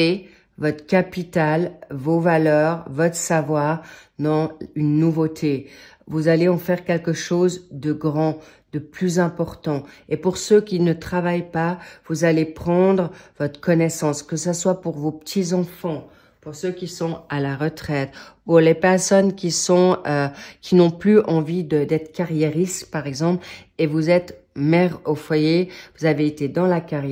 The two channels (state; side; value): identical; both; correlation 1.00